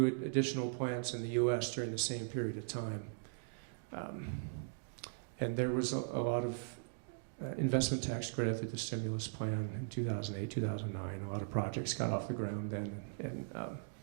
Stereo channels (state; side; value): silent; left; digital silence